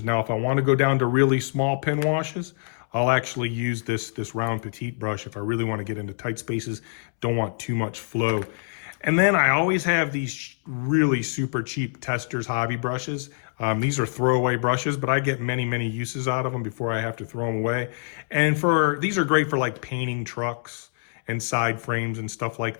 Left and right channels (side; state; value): right; silent; 62 dB below the other